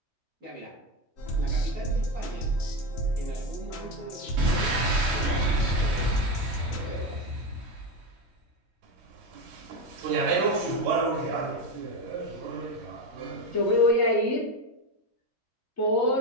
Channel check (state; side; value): late; left; 3.1 ms